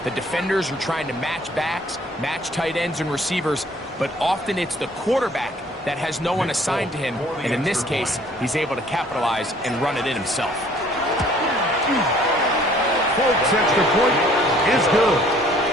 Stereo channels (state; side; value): normal; both; correlation 0.57